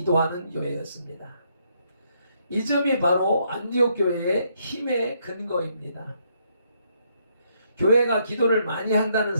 교회였습니다. 이 점이 바로 안디옥 교회의 힘의 근거입니다. 교회가 기도를 많이 한다는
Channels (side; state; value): both; inverted; correlation -0.73